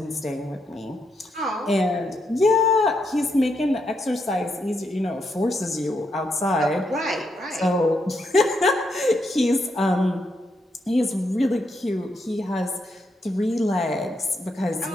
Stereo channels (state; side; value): normal; both; correlation 0.80